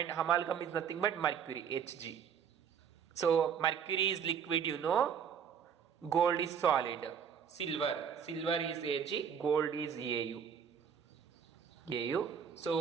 amalgam is nothing but mercury, Hg. So mercury is liquid, you know. Gold is solid. Silver is Ag, gold is Au.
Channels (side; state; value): left; quieter; 7.4 dB